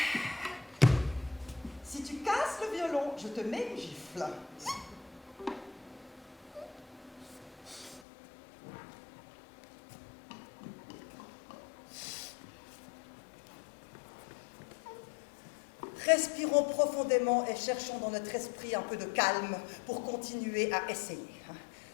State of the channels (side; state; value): right; drops out; at 8.0 s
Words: Si tu casses le violon, je te mets une gifle. Respirons profondément et cherchons dans notre esprit un peu de calme pour continuer à essayer.